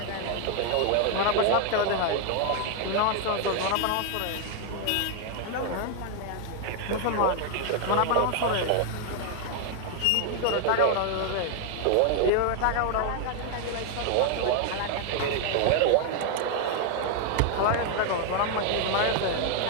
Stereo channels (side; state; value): both; different; correlation 0.00